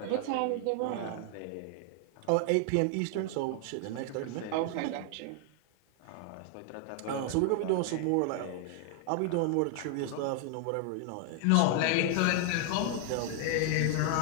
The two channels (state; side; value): different; both; correlation 0.00